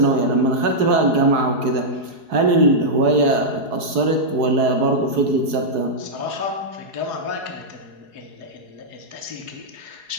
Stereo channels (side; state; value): left; late; 4.8 ms